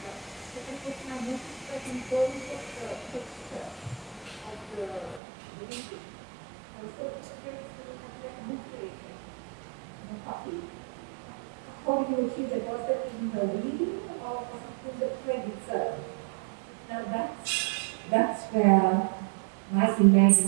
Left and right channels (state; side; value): drops out; left; at 5.2 s